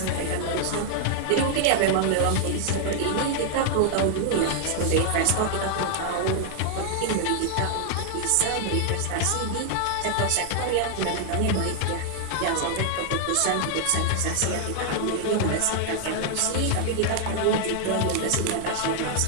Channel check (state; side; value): different; both; correlation 0.00